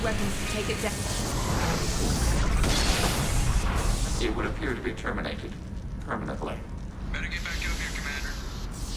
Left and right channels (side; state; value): both; identical; correlation 1.00